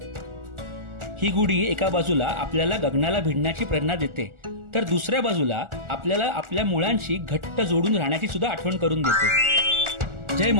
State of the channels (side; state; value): left; late; 1.4 ms